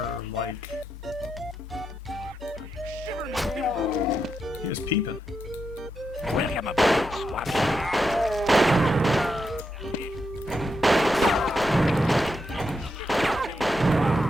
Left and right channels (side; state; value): both; normal; correlation 0.84